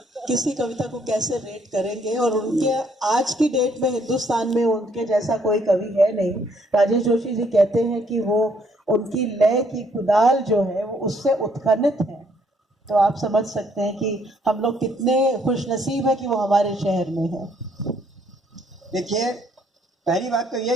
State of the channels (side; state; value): both; normal; correlation 0.67